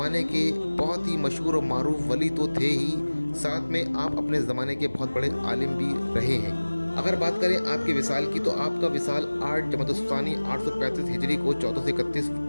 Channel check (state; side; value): inverted; both; correlation -1.00